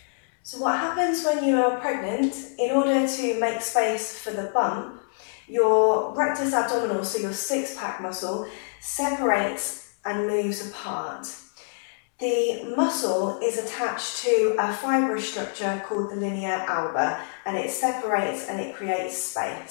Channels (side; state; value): right; silent; 61 dB below the other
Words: So what happens when you are pregnant, in order to make space for the bump, your rectus abdominal, so your six-pack muscle, separates and moves apart. The muscle is attached to a fibrous structure called the linea alba, and it separates and it creates